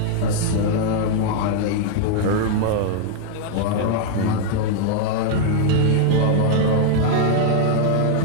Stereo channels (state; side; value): different; both; correlation 0.00